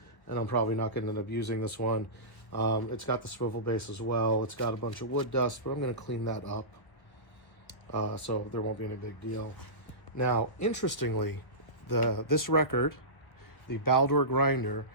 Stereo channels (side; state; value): right; late; 1.1 ms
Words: and I'm probably not going to end up using this one. It's got the swivel base as well. It's got a bunch of wood dust, but I'm going to clean that up, so there won't be any big deal. Now, interestingly, this record, the Baldor grinder,